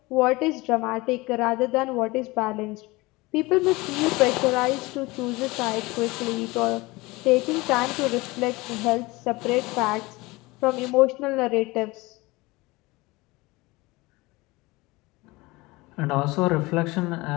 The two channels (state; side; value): quieter; right; 22.3 dB